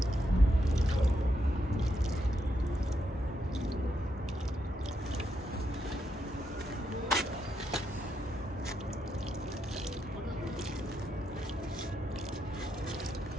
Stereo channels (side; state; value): both; normal; correlation 0.81